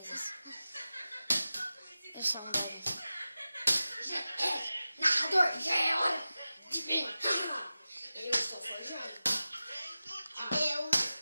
Eu sou um deles. Narrador, já é hora de ver. Eu estou forjando. Eu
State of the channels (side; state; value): both; inverted; correlation -0.94